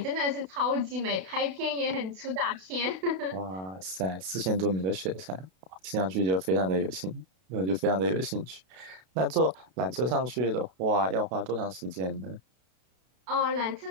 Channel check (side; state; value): left; late; 32 ms